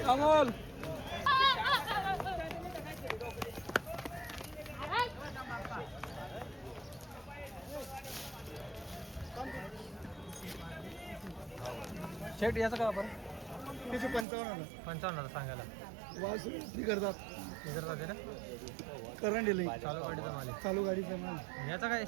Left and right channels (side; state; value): left; drops out; at 14.2 s